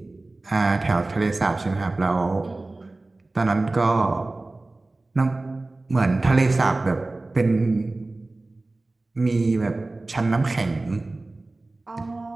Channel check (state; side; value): quieter; left; 3.0 dB